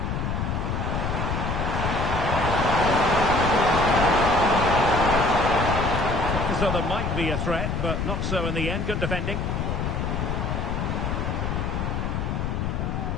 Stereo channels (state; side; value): noise; left; rumble, 1 dB below the sound